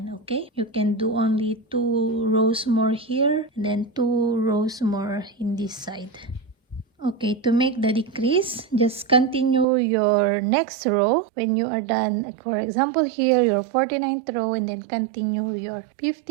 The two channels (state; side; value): drops out; left; at 9.7 s